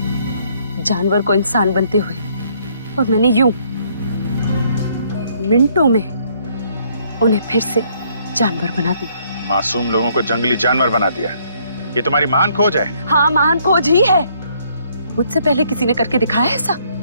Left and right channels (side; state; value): both; inverted; correlation -0.66